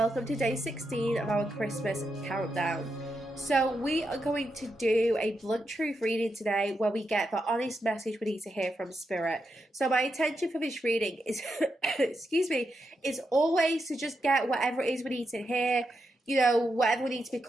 to day 16 of our Christmas countdown. So we are going to do a blunt truth reading today where we get the honest message we need to hear from Spirit. So my intention for this reading is, is always to just get whatever it is we need to hear, whatever we need to be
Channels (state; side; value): normal; both; correlation 0.85